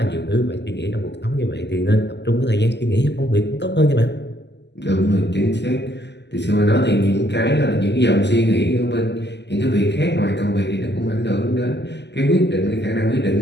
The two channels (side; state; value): right; late; 0.50 ms